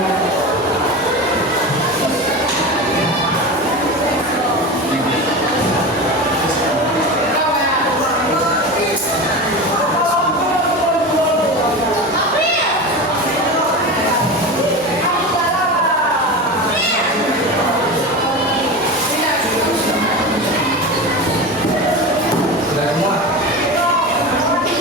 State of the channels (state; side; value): normal; both; correlation 0.26